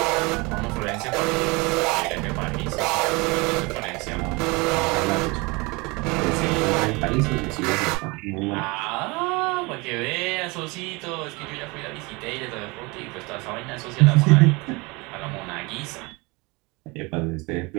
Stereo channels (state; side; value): quieter; left; 26.2 dB